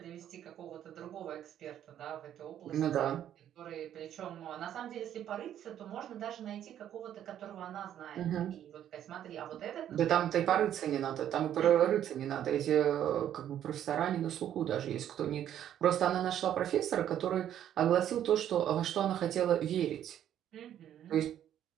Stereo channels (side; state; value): left; quieter; 10.6 dB